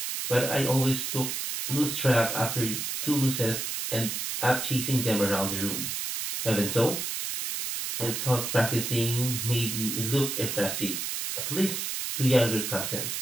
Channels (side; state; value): right; noise; hiss, 3 dB below the sound